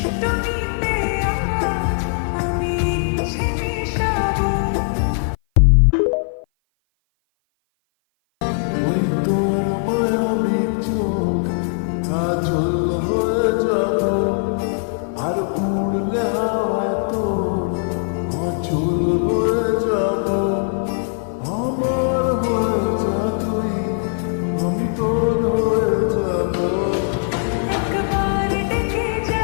আমি ইচ্ছে মিশাবো। ওই তোর মায়াবী চোখ কাজল হয়ে যাব, আর উড়লে হাওয়ায় তোর অচল হয়ে যাব। আমার হয়ে যা তুই, আমি তোর হয়ে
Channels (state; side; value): silent; right; 56 dB below the other